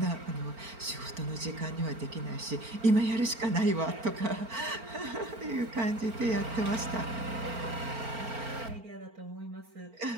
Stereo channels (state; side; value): late; left; 4.4 ms